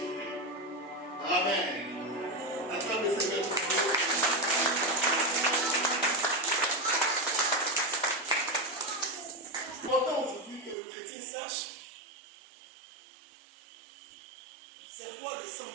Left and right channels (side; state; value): left; drops out; at 10.8 s